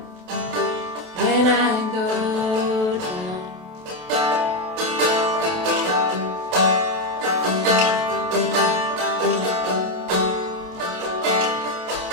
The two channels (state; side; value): late; left; 27 ms